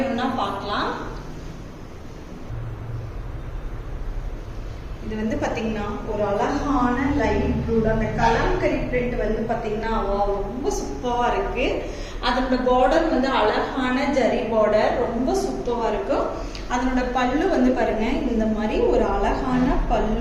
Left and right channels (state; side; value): identical; both; correlation 1.00